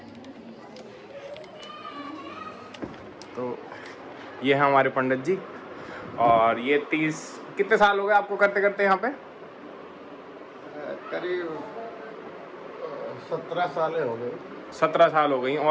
तो ये है हमारे पंडित जी, और ये 30 कितने साल हो गए आपको करते करते यहाँ पे? करीब 17 साल हो गए। 17 साल हो गई,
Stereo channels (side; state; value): both; identical; correlation 1.00